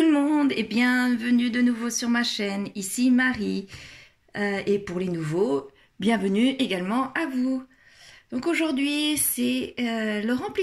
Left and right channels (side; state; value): both; identical; correlation 1.00